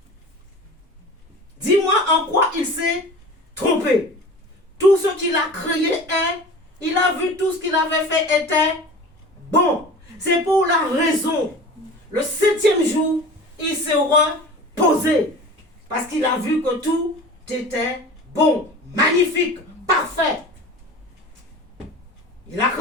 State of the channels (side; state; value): both; normal; correlation 0.38